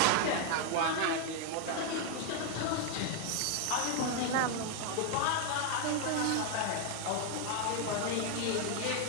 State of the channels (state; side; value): different; both; correlation 0.01